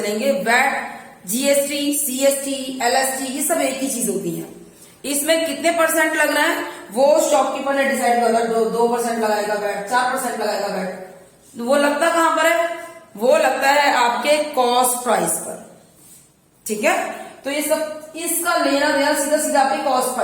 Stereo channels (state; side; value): identical; both; correlation 1.00